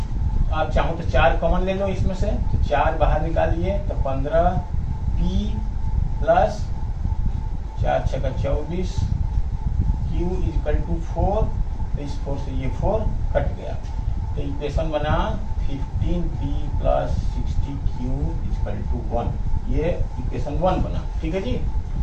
आप चाहो तो 4 कॉमन ले लो इसमें से, तो 4 बाहर निकालिए तो 15p प्लस 4 छक्का 24 q इक्वल टू 4, तो इस 4 से ये 4 कट गया, तो इक्वेशन बना 15p plus 60q equal to 1, ये इक्वेशन 1 बना। ठीक है जी,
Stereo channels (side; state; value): both; identical; correlation 1.00